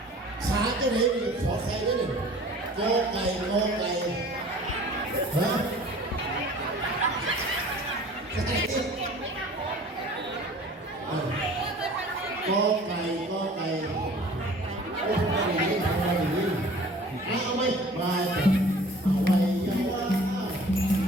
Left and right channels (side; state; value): both; normal; correlation 0.47